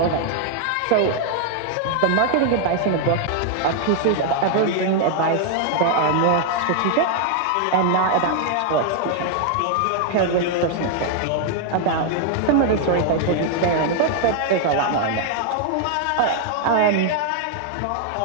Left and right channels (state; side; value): different; both; correlation 0.00